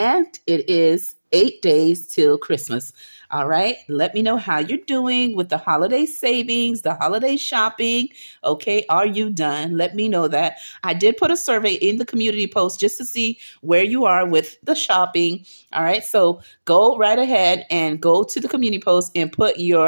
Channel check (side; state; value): both; inverted; correlation -1.00